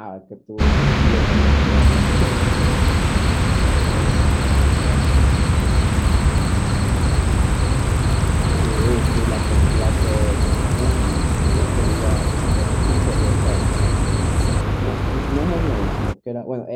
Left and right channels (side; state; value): both; identical; correlation 1.00